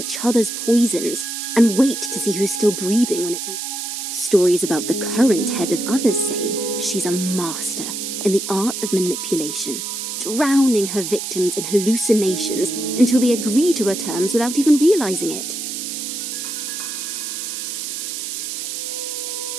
other's poisons and wait to see who's still breathing when it's all... Stories about the current head of others say she's a master in the art of manipulation, drowning her victims in hallucinations until they agree to her terms without even realizing it.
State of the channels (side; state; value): right; noise; hiss, 5 dB below the sound